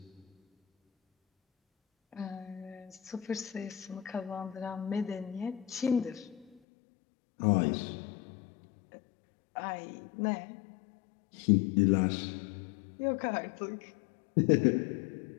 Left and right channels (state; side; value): drops out; right; at 6.6 s